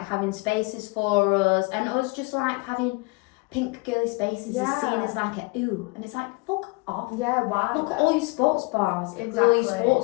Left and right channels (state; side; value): quieter; right; 26.8 dB